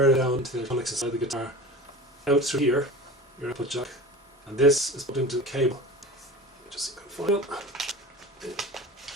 it down to the electronics inside the guitar, out through here, your output jack, and this is put into the cable. Just find it.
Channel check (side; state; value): both; normal; correlation 0.34